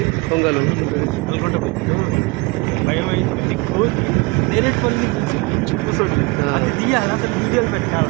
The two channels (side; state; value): left; quieter; 26.2 dB